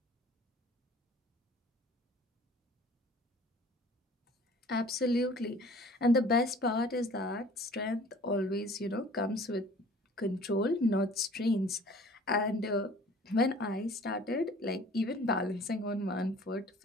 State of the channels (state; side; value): normal; both; correlation 0.49